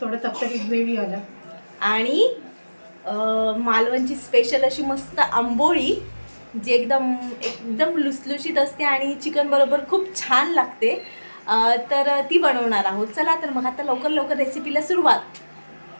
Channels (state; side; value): inverted; both; correlation -1.00